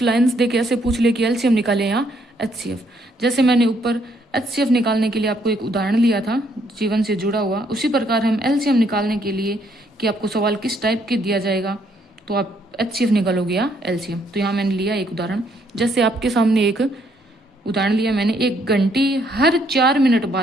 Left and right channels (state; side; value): normal; both; correlation 0.70